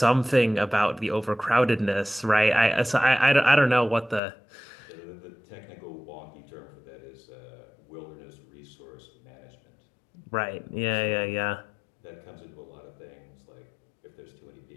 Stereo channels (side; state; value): right; drops out; at 4.2 s